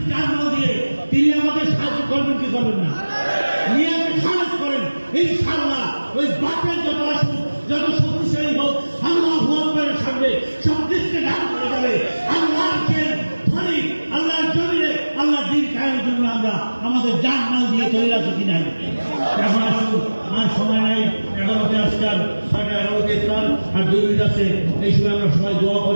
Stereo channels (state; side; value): inverted; both; correlation -1.00